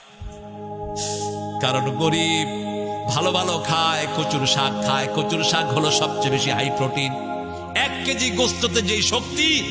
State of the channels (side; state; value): both; identical; correlation 1.00